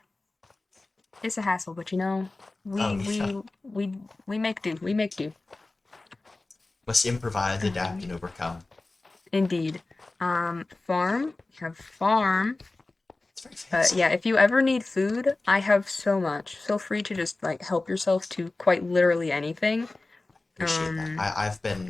It's a hassle, but Oh we yeah. we we we make do. We make do. Must improvise, adapt, Um, and overcome. Indeed. Farm. We have farm. It's very fancy. Yeah, if you ever need food, I have so much. Feel free to just like help yourself to quite literally anything. Appreciate that. Um,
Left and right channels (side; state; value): right; quieter; 3.2 dB